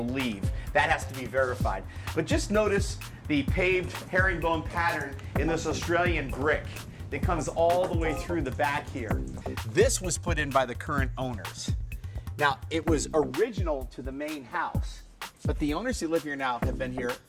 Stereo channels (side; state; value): both; identical; correlation 1.00